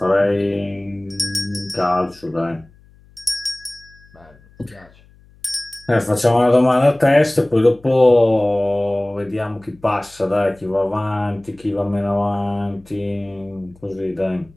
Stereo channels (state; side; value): noise; left; hum, 28 dB below the sound